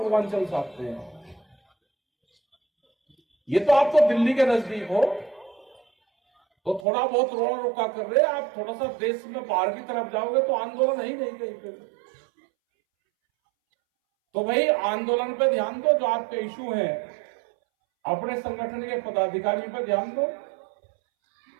से आते हैं। ये तो आप तो दिल्ली के नजदीक हो, तो थोड़ा बहुत रोड़ा रुका कर रहे हैं। आप थोड़ा सा देश में बाहर की तरफ जाओगे तो आंदोलन ही नहीं कहीं पे। तो भाई आंदोलन पे ध्यान दो, जो आपके इशू हैं अपने संगठन के पदाधिकारियों पर ध्यान दो,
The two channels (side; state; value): left; drops out; at 6.9 s